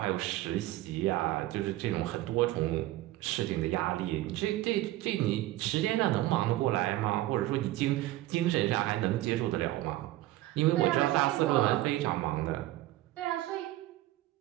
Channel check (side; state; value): left; quieter; 16.1 dB